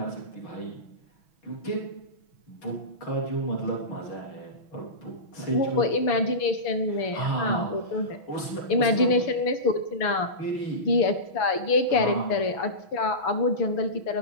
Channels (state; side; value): late; right; 6.1 ms